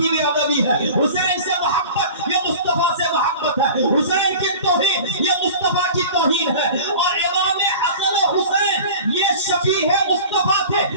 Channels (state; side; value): inverted; both; correlation -0.39